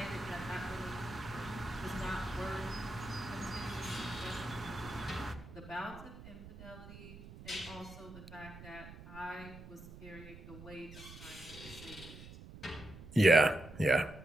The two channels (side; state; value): right; noise; rumble, 15 dB below the sound